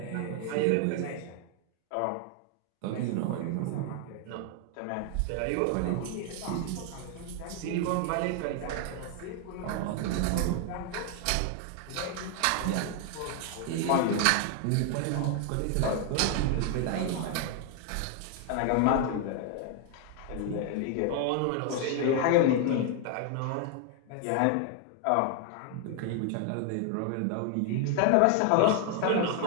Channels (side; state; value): both; different; correlation 0.00